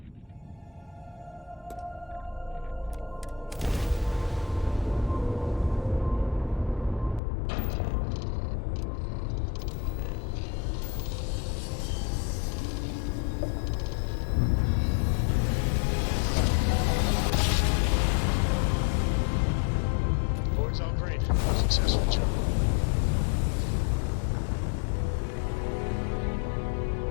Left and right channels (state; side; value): drops out; right; at 7.2 s